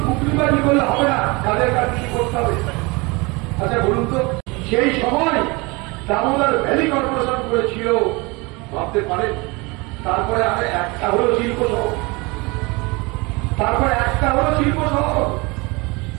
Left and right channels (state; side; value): quieter; left; 26.1 dB